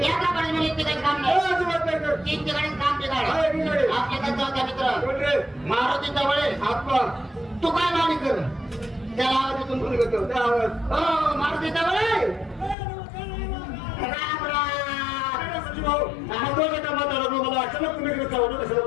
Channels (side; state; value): right; drops out; at 12.8 s